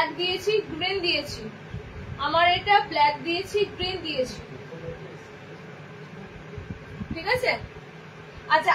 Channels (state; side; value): identical; both; correlation 1.00